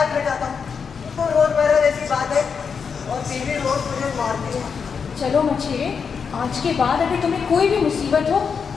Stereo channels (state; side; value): quieter; right; 6.1 dB